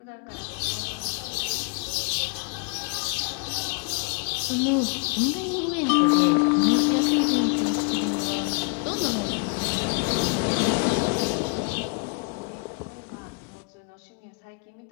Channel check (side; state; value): right; quieter; 35.0 dB